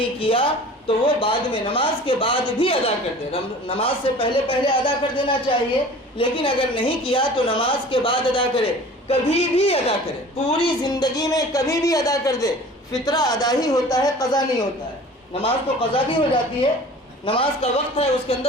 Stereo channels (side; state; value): both; normal; correlation 0.43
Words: کیا تو وہ بعد میں نماز کے بعد بھی ادا کر دیں۔ نماز سے پہلے پہلے ادا کر دینا چاہیے، لیکن اگر نہیں کیا تو نماز کے بعد ادا کرے، کبھی بھی ادا کرے، پوری زندگی میں کبھی بھی ادا کر دے۔ فطرہ ادا ہی ہوتا ہے، قضا نہیں ہوتا ہے۔ نماز تو قضا بھی ہو جاتی ہے، نماز کا وقت ہے اس کے